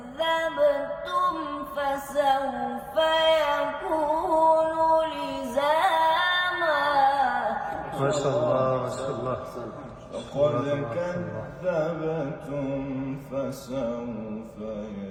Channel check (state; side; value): identical; both; correlation 1.00